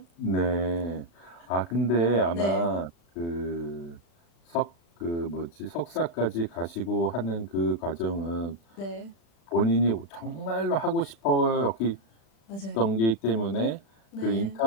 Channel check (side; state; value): right; late; 36 ms